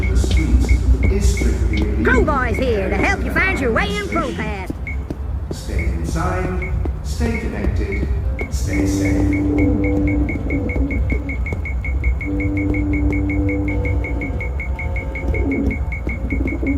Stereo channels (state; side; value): identical; both; correlation 1.00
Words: in the streets is strictly illegal. Crowboy's here to help you find your way in ProPass. Stay inside, stay connected, stay safe.